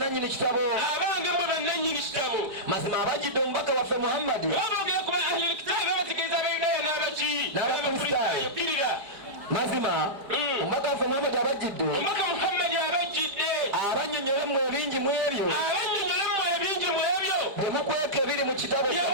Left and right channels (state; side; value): late; left; 4.9 ms